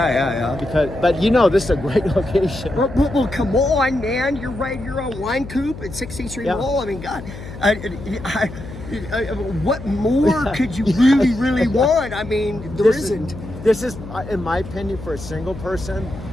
But this is a great location. Well, come on, man. You're right. You're on Wine Coop at 16th Street Mall. I mean, God, what more could you really want? I mean, there isn't. This is, in my opinion, for a single person.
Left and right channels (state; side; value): noise; left; hum, 12 dB below the sound